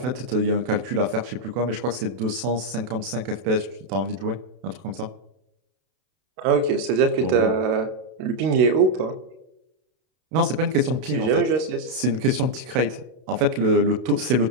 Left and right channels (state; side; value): late; left; 32 ms